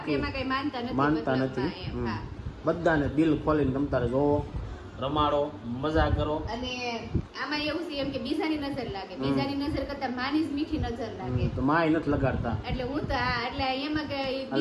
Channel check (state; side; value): identical; both; correlation 1.00